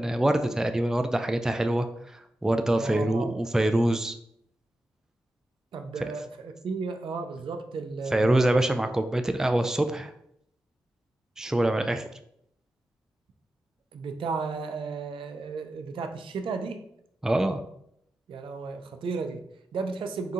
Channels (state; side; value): normal; both; correlation 0.92